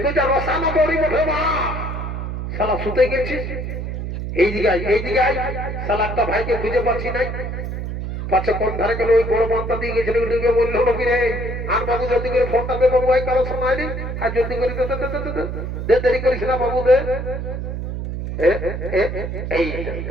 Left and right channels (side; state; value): right; noise; hum, 5 dB below the sound